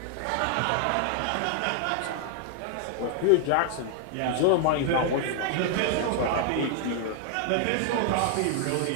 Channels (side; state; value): both; different; correlation 0.00